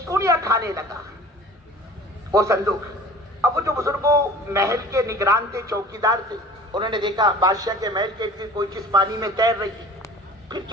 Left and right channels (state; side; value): normal; both; correlation 0.44